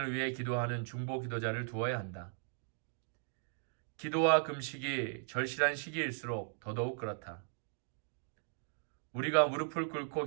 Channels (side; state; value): left; silent; digital silence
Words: 위해 기도하는 중보 기도자를 두어야 한다. 기도와 금식이 절실한 시기일수록 더더욱 그렇다. 우리가 무릎을 꿇고